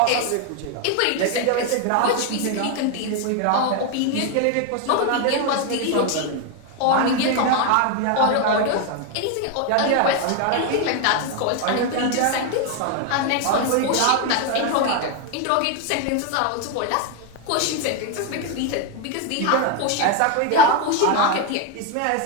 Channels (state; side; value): different; both; correlation 0.01